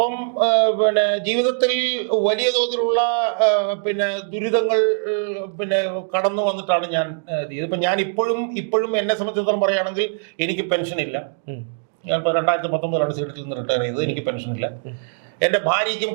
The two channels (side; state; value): left; silent; digital silence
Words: പിന്നെ ജീവിതത്തിൽ വലിയ തോതിലുള്ള പിന്നെ ദുരിതങ്ങൾ പിന്നെ കടന്നു വന്നിട്ടാണ് ഞാൻ ഇപ്പൊ ഞാൻ ഇപ്പോഴും എന്നെ സംബന്ധിച്ചിടത്തോളം പറയുകയാണെങ്കിൽ എനിക്ക് പെൻഷൻ ഇല്ല. ഞാൻ 2019 സീറ്റിൽ നിന്ന് റിട്ടയർ ചെയ്തത്. എനിക്ക് പെൻഷൻ ഇല്ല. എന്റെ ഭാര്യയ്ക്കും